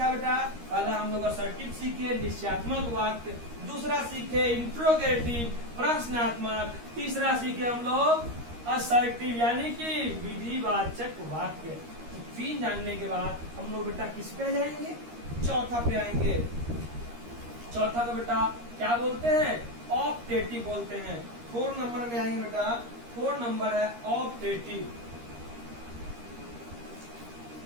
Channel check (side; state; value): left; late; 13 ms